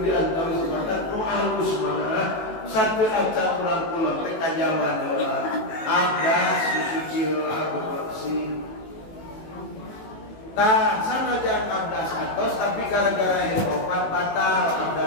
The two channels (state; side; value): late; right; 18 ms